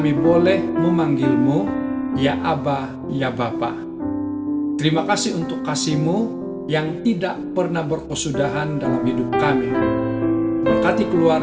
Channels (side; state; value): both; identical; correlation 1.00